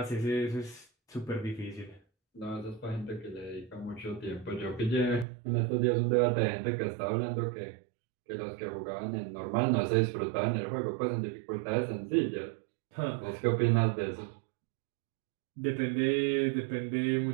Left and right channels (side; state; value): left; drops out; at 5.2 s